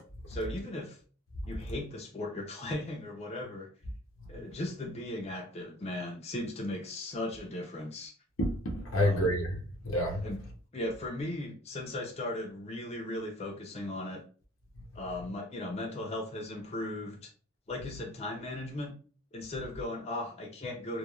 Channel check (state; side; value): normal; both; correlation 0.50